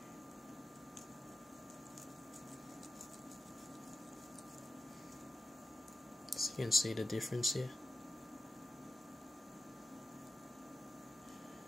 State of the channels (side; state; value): both; normal; correlation 0.91